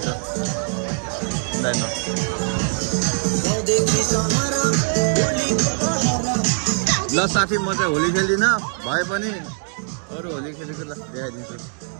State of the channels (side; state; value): left; silent; 61 dB below the other